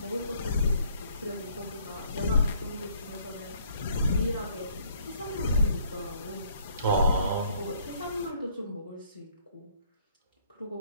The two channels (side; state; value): both; inverted; correlation -0.63